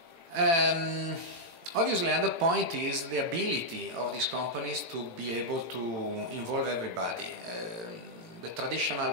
Obviously, another point is the ability of these companies to be able to involve everybody. The traditional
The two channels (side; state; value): left; late; 18 ms